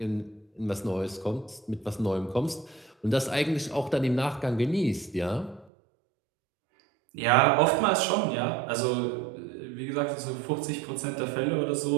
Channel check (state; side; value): drops out; left; at 5.7 s